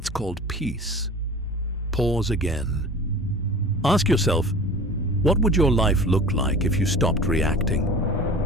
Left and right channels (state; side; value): normal; both; correlation 0.39